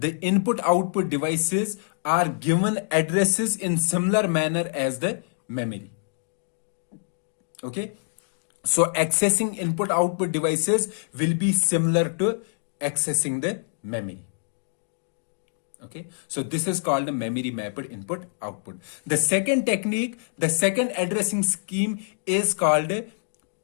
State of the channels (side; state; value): right; silent; digital silence